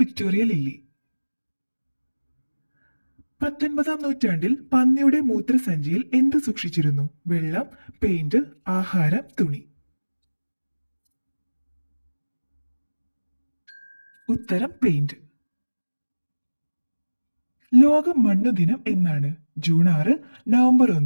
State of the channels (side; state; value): both; inverted; correlation -1.00